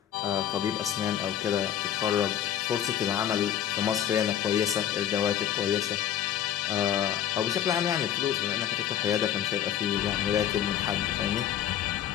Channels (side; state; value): right; quieter; 10.3 dB